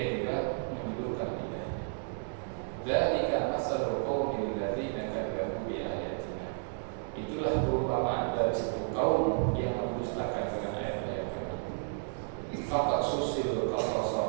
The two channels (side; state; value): left; silent; digital silence